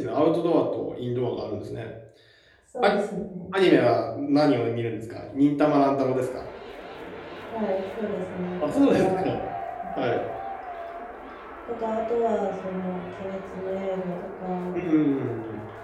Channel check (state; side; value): identical; both; correlation 1.00